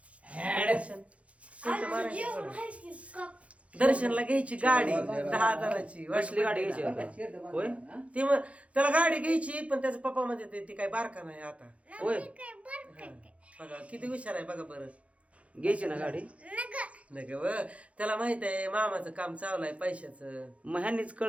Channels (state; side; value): late; left; 0.064 ms